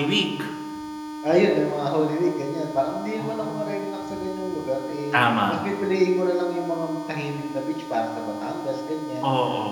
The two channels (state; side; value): identical; both; correlation 1.00